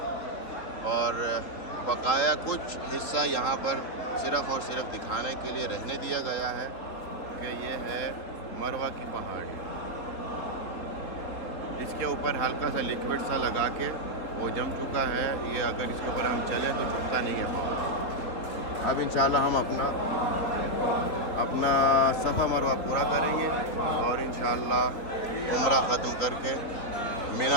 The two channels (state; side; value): late; right; 3.5 ms